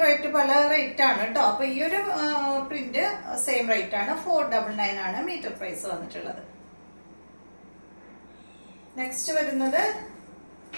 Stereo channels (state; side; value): inverted; both; correlation -1.00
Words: റേറ്റ് പല റേറ്റ് ആണ് കേട്ടോ. അപ്പൊ ഈ ഒരു പ്രിന്റ് സെയിം റേറ്റ് ആണ്, 499 ആണ് മീറ്റർ പ്രൈസ് വന്നിട്ടുള്ളത്. നെക്സ്റ്റ് വരുന്നത്